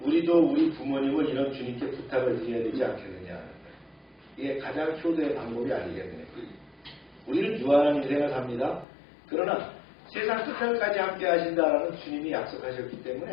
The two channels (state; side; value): drops out; right; at 8.8 s